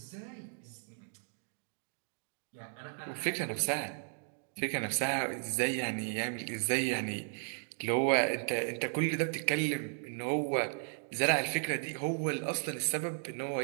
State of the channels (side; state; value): left; silent; 54 dB below the other